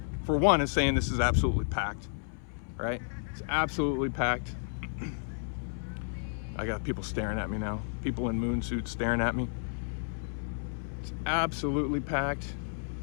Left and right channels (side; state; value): right; silent; 57 dB below the other